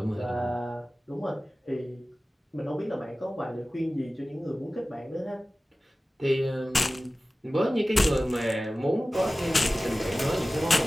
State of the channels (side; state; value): both; normal; correlation 0.97